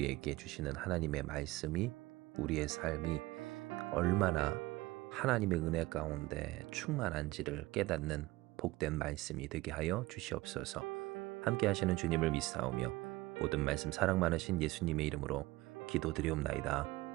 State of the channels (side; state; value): left; quieter; 19.7 dB